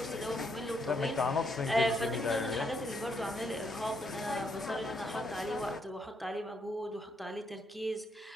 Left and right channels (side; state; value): both; normal; correlation 0.75